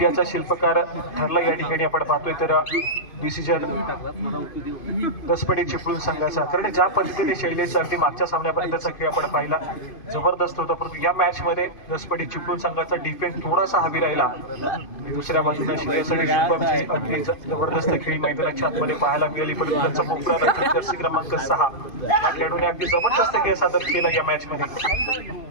शिल्पकार ठरला या ठिकाणी आपण पाहतोय तर डिसिजन दसपटी चिपळूण संघाचा कारण ज्या पद्धतीने शैलेश अगदी मागच्या सामन्यापर्यंतचा खेळ आपण पाहिला जबरदस्त होता परंतु या मॅच मध्ये दसपटी चिपळूण संघाचा डिफेन्स थोडासा हवी राहिला दुसऱ्या बाजूने श्रेयस आणि शुभमची अगदी जबरदस्त खेळी मैदानाच्या आतमध्ये पाहायला मिळाली परंतु त्यांचा मोकळा रक्षक जर्सी क्रमांक 6 या खेळाडूने अगदी जबरदस्त खेळ सादर केला या मॅच मध्ये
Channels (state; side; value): late; right; 2.5 ms